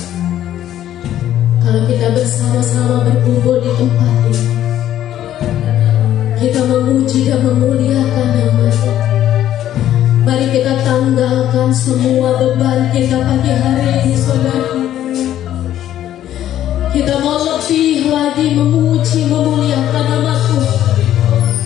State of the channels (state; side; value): quieter; right; 11.9 dB